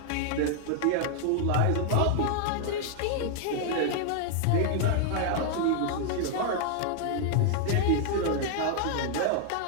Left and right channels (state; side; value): different; both; correlation 0.00